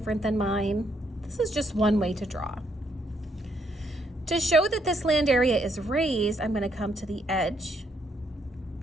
than mine. This is just one way to draw. To show that this land area is raised, I'm going to come to the edge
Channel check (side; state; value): both; normal; correlation 0.73